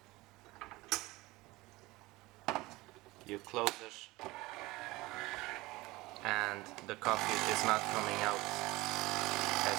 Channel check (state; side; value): quieter; left; 20.7 dB